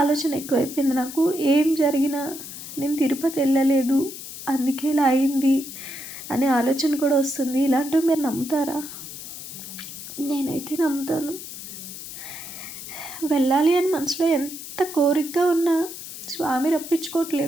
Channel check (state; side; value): noise; left; hiss, 11 dB below the sound